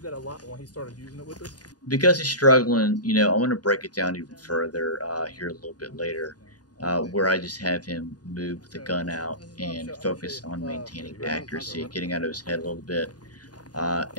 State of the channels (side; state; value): right; late; 0.69 ms